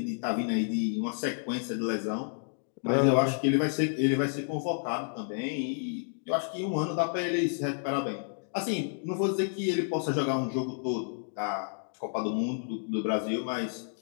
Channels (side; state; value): right; silent; digital silence